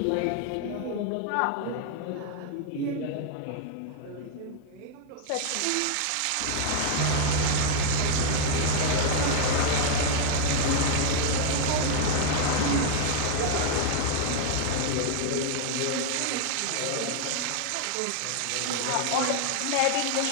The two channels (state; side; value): different; both; correlation 0.00